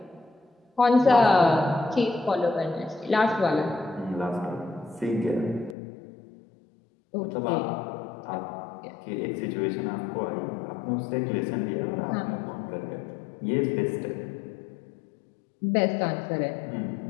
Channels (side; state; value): right; drops out; at 5.8 s